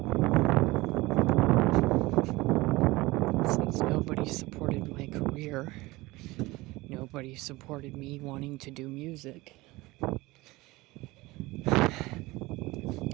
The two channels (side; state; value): left; quieter; 20.9 dB